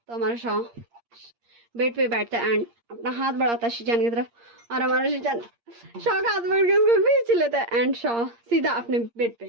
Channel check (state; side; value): late; left; 8.6 ms